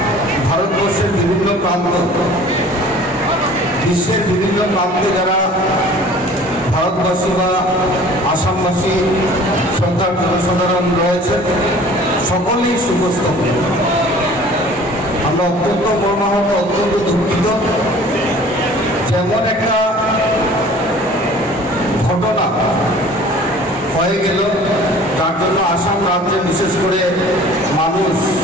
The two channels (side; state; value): both; normal; correlation 0.48